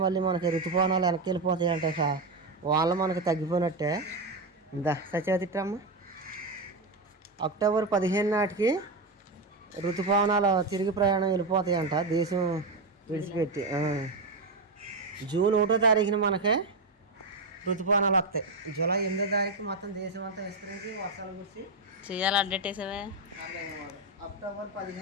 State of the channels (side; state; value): left; quieter; 3.2 dB